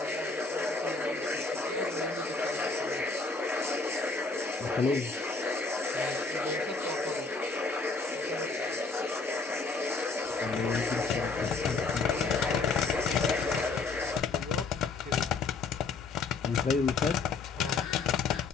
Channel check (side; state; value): right; quieter; 4.2 dB